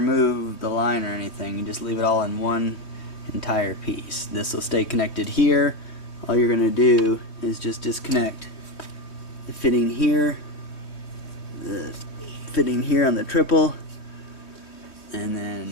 the line or anything. You just leave it all in one entire piece. This will stay connected here. All you're going to do is just disconnect the fitting here, the fitting here on the triple,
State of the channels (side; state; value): right; late; 3.2 ms